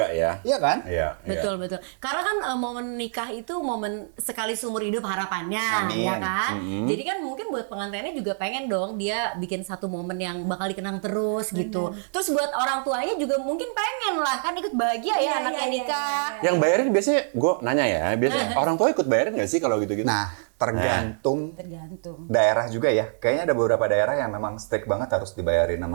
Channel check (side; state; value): left; silent; digital silence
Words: ya. Iya kan? Iya. betul. Karena kan momen nikah itu momen sekali seumur hidup harapannya, Amin. ya kan? Jadi kan mungkin buat pengantinnya juga pengen dong dia bikin satu momen yang bakal dikenang terus gitu. Terus buat orang tuanya juga mungkin pengen lah kan ikut bahagia ya Iya, anaknya iya, nikah. Yang bayarin biasanya, gue nanya ya, biasanya orang tua ikut bayarin nggak sih kalau gitu-gitu? Nah, tergantung Tergantung. daerah juga ya. Kayaknya ada beberapa daerah yang memang strict banget harus dibayarin